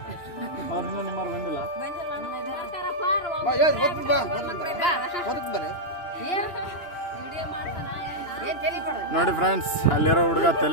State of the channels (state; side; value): late; right; 2.9 ms